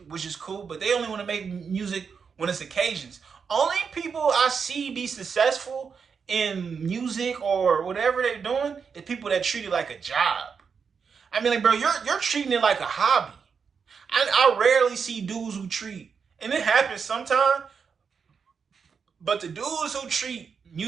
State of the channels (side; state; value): left; quieter; 6.0 dB